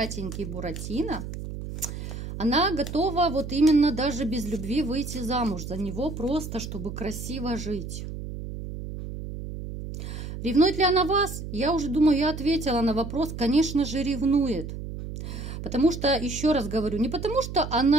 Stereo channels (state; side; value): noise; right; hum, 8 dB below the sound